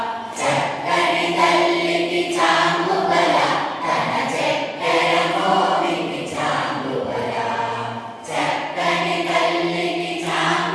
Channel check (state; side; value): identical; both; correlation 1.00